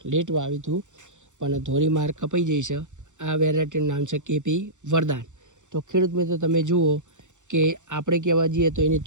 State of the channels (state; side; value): late; left; 0.85 ms